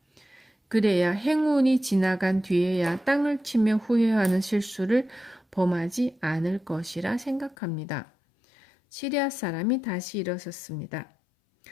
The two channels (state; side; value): drops out; right; at 7.6 s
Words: 그래야 행운이 지나간 뒤에야 땅을 치며 후회하는 실수를 범하지 않을 것이라 생각합니다. 시리아 사람이 다시 일어섰습니다.